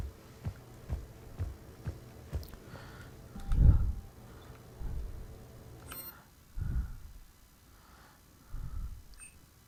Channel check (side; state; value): both; identical; correlation 1.00